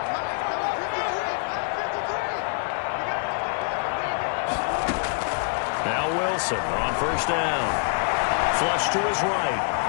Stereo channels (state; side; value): silent; right; digital silence